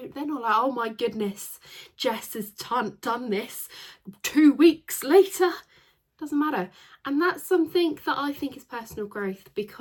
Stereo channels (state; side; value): identical; both; correlation 1.00